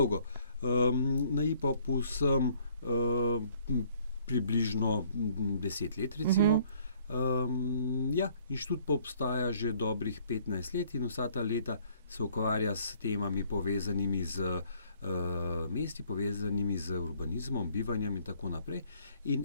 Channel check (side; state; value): both; inverted; correlation -0.60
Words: Na IPOP-u sem približno 10 let, recimo. Inštitut pa obstaja že dobrih 15 let in vsa ta leta se ukvarja s temami povezanimi z mesti, povezanimi z urbanizmom, bivanjem in tako naprej. In